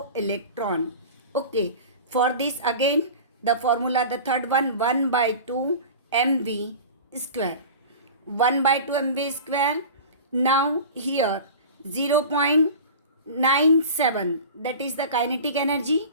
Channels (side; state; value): both; inverted; correlation -0.35